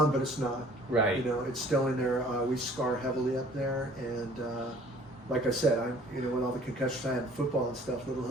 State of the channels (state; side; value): normal; both; correlation 0.54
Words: but it's not. Right. You know, it's still in there. We scar heavily up there, and like I said, you know, with all the concussions I had in football and stuff, little